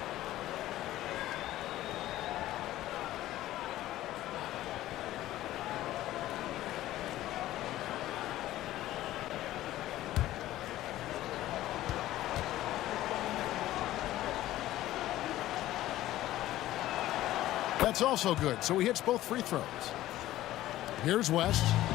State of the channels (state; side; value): quieter; right; 14.8 dB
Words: That's also good, so he hits both free throws. Here's West.